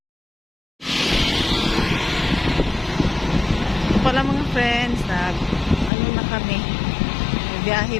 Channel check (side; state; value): right; drops out; at 5.9 s